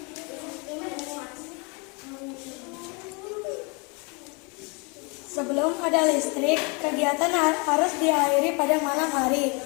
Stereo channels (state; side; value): quieter; right; 31.6 dB